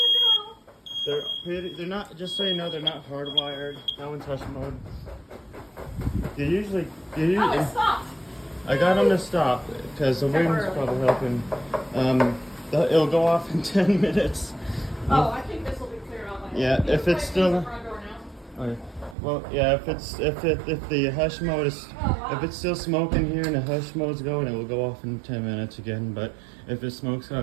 good girl. They're not, just so you know, they're not hardwired. That one's hush mode. They usually, Oh, it stopped. I got them to stop because the wind's probably helping. It'll go off in 10 minutes. Oh, I think this will be clear out. Yeah, if it's still. The front door now. Okay. Well, yeah, if the hush mode is, if it's still smoking here and the hush mode's going, it will go off in 10 minutes again. But if it smokes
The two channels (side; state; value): left; drops out; at 19.2 s